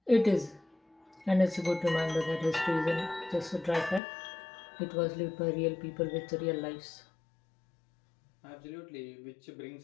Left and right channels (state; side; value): drops out; right; at 4.0 s